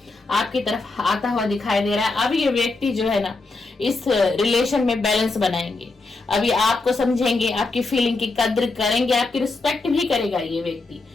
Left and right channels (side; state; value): right; quieter; 3.5 dB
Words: आपकी तरफ आता हुआ दिखाई दे रहा है। अब ये व्यक्ति जो है ना इस रिलेशन में बैलेंस बनाएंगे, अभी आपको समझेंगे, आपकी फीलिंग की कद्र करेंगे, आपकी रिस्पेक्ट भी करेगा ये व्यक्ति।